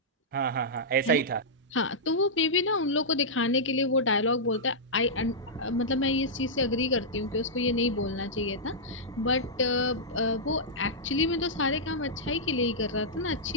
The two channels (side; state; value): both; normal; correlation -0.11